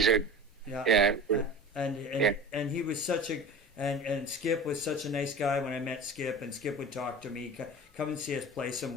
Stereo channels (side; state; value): both; normal; correlation 0.34